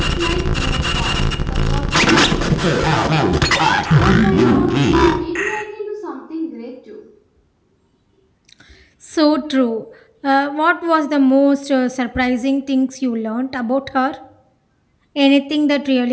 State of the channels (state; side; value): identical; both; correlation 1.00